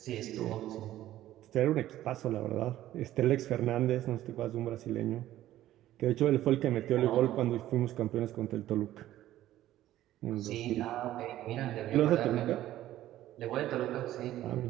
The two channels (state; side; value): quieter; left; 13.8 dB